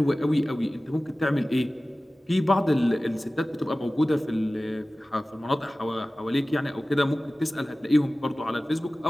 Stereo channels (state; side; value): normal; both; correlation 0.97